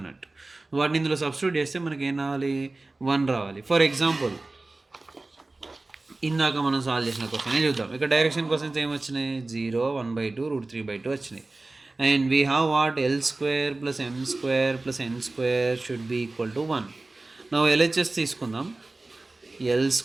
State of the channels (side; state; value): left; quieter; 3.2 dB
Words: వాటిని ఇందులో సబ్స్టిట్యూట్ చేస్తే మనకి ఏం రావాలి? 1 రావాలి. ఫర్ ఎగ్జాంపుల్ ఇందాక మనం సాల్వ్ చేసిన క్వశ్చన్ చూద్దాం. ఇక్కడ డైరెక్షన్ క్వశ్చన్స్ ఏమొచ్చినాయి? 0, 1/2, √3/2 వచ్చినాయి. And we have what? L² + M² + N² should be equal to 1. నా LHS తీసుకుందాం. L²